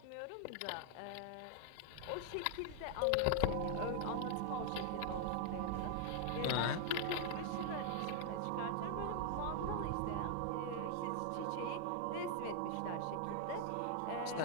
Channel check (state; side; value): different; both; correlation 0.00